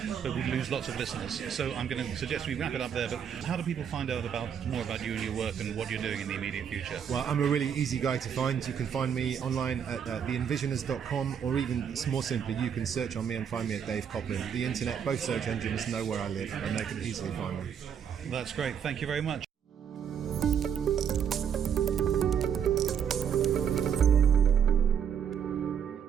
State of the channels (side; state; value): left; quieter; 7.9 dB